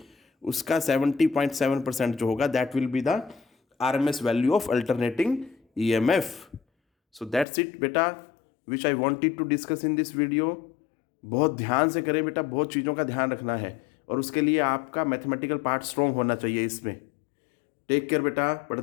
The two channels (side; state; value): right; drops out; at 7.5 s